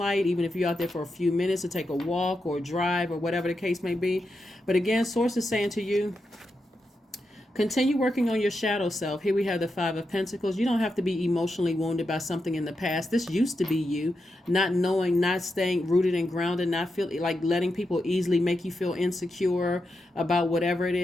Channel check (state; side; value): normal; both; correlation 0.87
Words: even if you're out there for a few minutes to take a walk or drive or whatever the case may be. But again, Source is saying to you, Continue working on your shadow self. Here we have the Five of Pentacles. You don't have to be emotionally wounded by something in the past. This used to be you, not knowing, not staying rooted and grounded, not feel like letting people easily make you feel insecure about whatever it